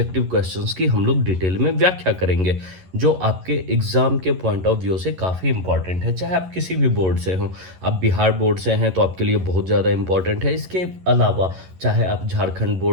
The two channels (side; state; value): left; late; 11 ms